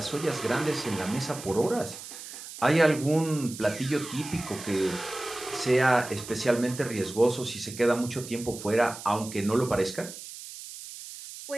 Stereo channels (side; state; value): right; noise; hiss, 12 dB below the sound